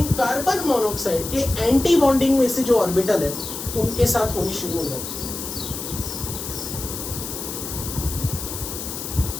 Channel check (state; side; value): noise; left; hiss, 7 dB below the sound